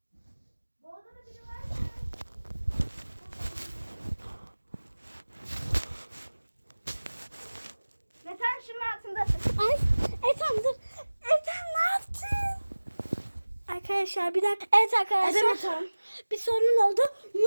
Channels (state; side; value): inverted; both; correlation -1.00